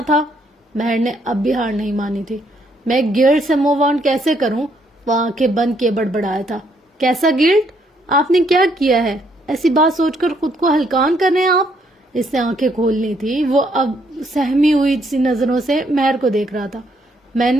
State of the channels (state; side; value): normal; both; correlation 0.71